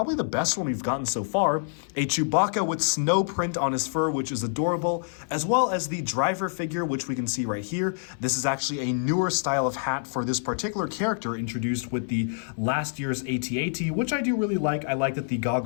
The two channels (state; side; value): silent; right; 58 dB below the other